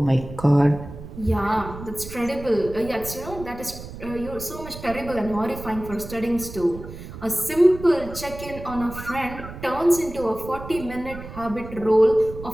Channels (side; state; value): right; noise; rumble, 12 dB below the sound